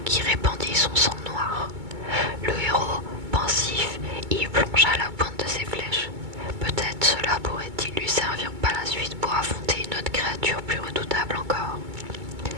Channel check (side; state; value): left; late; 2.2 ms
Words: qui répandit son sang noir. Le héros, pensif, y plongea la pointe de ses flèches. Peut-être cela pourrait-il lui servir par la suite pour affronter une autre créature plus redoutable encore.